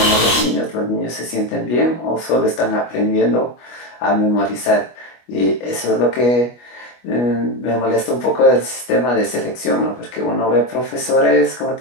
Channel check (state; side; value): late; right; 25 ms